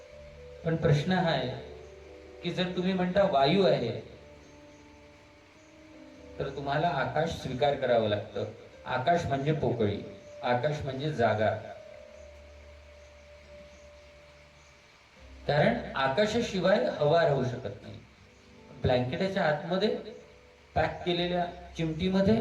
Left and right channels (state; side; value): identical; both; correlation 1.00